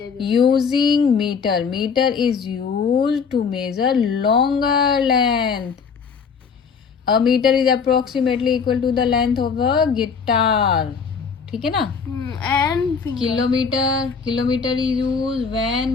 भी। Using metre, metre is use to measure longer length. A metre is approximately equal to the length of a guitar. ठीक है ना। And kilometre, kilometre is use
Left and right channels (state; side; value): quieter; right; 5.9 dB